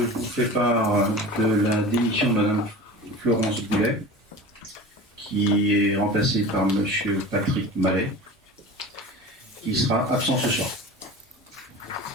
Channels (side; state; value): both; normal; correlation 0.35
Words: fais part de la démission de Madame Florence Boulet, qui est remplacée par Monsieur Patrick Mallet, qui sera absent ce soir.